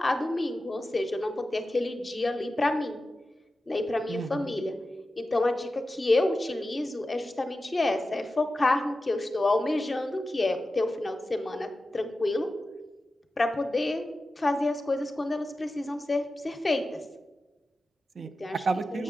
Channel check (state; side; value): normal; both; correlation 0.93